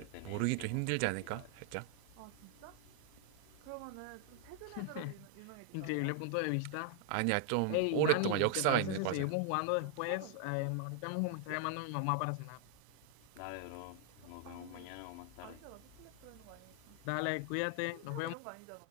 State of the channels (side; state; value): both; different; correlation 0.00